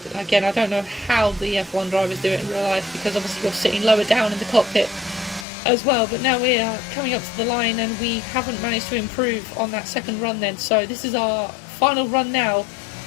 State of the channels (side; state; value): right; drops out; at 5.5 s